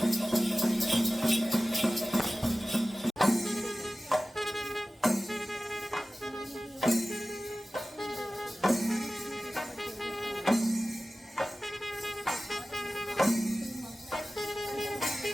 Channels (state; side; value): normal; both; correlation 0.96